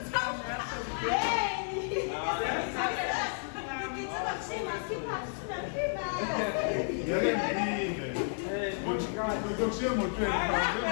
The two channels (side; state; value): right; silent; 56 dB below the other